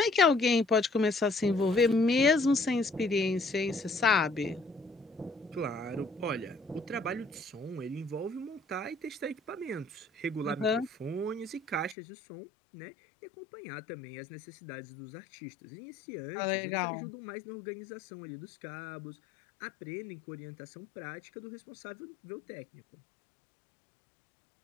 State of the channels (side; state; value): right; drops out; at 12.0 s